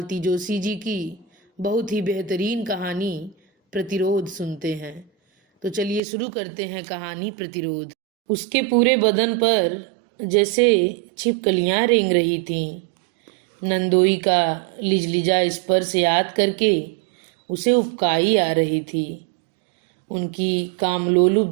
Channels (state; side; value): drops out; left; at 6.0 s